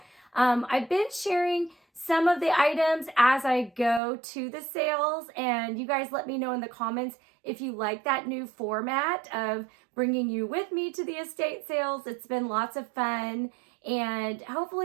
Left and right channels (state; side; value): drops out; left; at 4.0 s